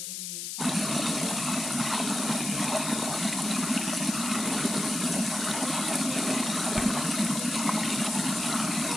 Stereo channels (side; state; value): left; noise; hiss, 5 dB below the sound